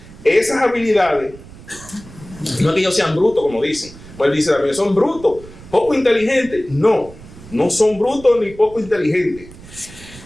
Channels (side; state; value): right; noise; rumble, 19 dB below the sound